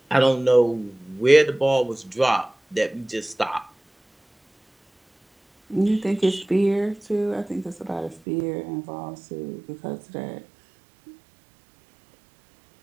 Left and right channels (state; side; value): drops out; left; at 8.2 s